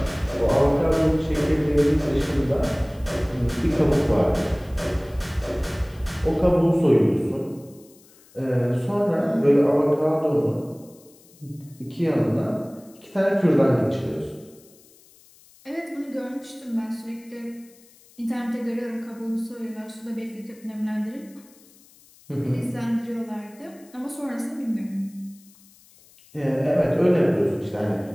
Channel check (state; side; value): noise; left; hiss, 27 dB below the sound